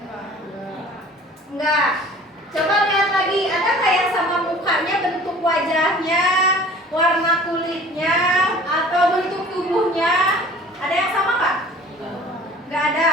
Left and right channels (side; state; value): both; normal; correlation 0.47